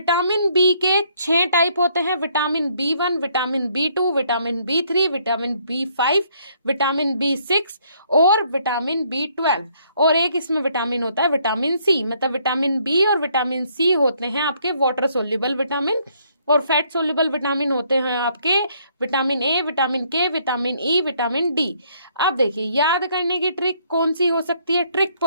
बी के 6 टाइप होते हैं। Vitamin B 1, vitamin B 2, vitamin B 3, vitamin B 5, vitamin B 6 और विटामिन बी 12। और एक इसमें विटामिन होता है विटामिन सी। मतलब विटामिन बी और विटामिन सी होते हैं आपके वाटर सोल्यूबल विटामिन और फैट सोल्यूबल विटामिन होते हैं आपके vitamin A, vitamin K, vitamin E, vitamin D. अब देखिए, याद करने की ट्रिक कौन सी हो सकती है। ट्रिक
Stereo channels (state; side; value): inverted; both; correlation -0.67